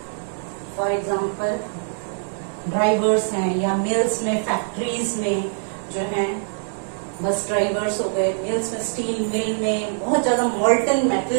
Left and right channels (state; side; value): silent; left; digital silence